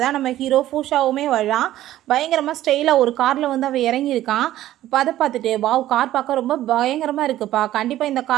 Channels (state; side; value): quieter; left; 13.9 dB